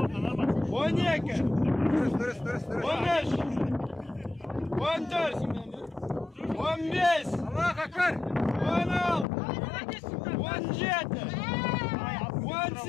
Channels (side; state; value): right; drops out; at 9.2 s